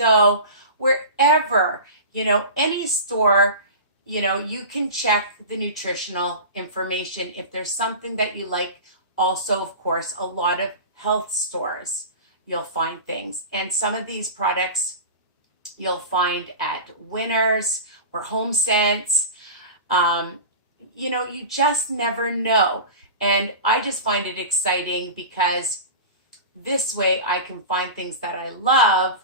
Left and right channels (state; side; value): inverted; both; correlation -0.31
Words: wherever, any store, you can check the nutritional information if there's something that you like. Also, of course, a lot of health stores, you'll find things. And some of these products you'll find at Winners or Home Sense. You just never know. And I just find it exciting because this way I can find things that I love